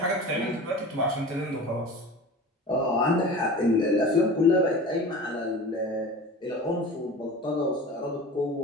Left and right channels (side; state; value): both; normal; correlation 0.36